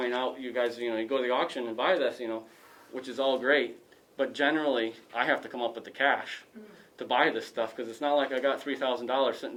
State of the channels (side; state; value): both; identical; correlation 1.00